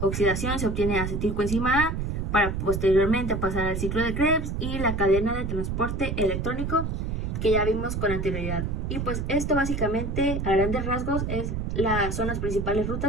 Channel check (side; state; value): right; noise; rumble, 2 dB below the sound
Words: se obtiene acetilcoenzima A para posteriormente pasar al ciclo de Krebs y la cadena de transporte electrónico que ya vimos con anterioridad. Y pues esto básicamente a grandes rasgos son las principales